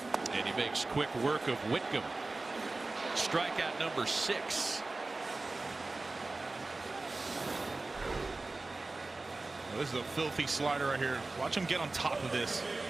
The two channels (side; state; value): left; quieter; 3.3 dB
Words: And he makes quick work of Whitcomb. Strikeout number 6. This is a filthy slider right here. Watch him get on top of this.